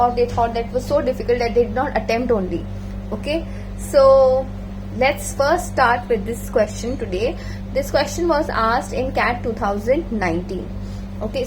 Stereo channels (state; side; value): identical; both; correlation 1.00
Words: they thought that was so difficult that they did not attempt only. Okay, so let's first start with this question today. This question was asked in CAT 2019. Okay,